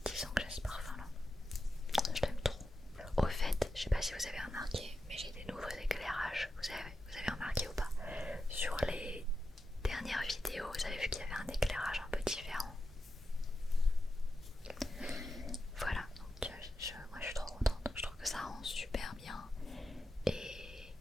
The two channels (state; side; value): normal; both; correlation 0.88